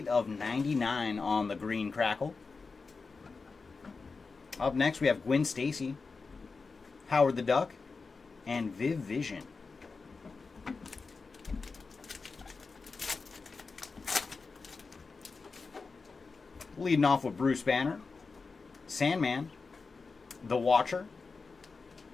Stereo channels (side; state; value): right; quieter; 4.4 dB